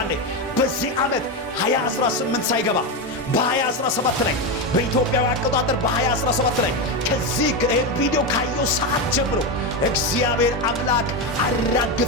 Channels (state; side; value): normal; both; correlation 0.12